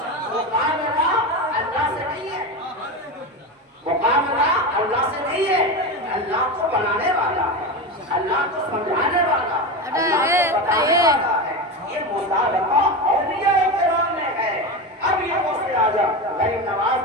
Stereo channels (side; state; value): both; normal; correlation 0.20